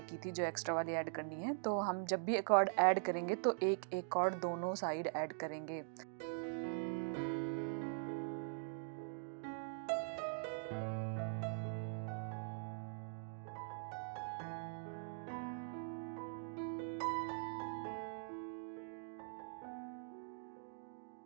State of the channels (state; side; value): silent; left; digital silence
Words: की थी जो एक्स्ट्रा वाली ऐड करनी है। तो हम जब भी कॉर्ड ऐड करेंगे तो एक एक कॉर्ड दोनों साइड ऐड करेंगे।